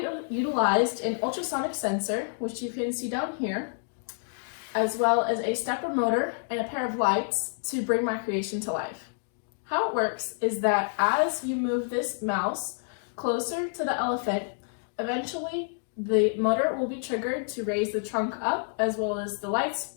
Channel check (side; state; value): right; silent; digital silence